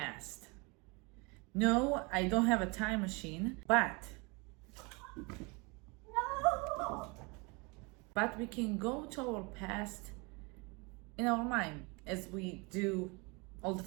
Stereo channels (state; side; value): quieter; left; 29.0 dB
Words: No, I don't have a time machine, but we can go to our past in our mind as we do all the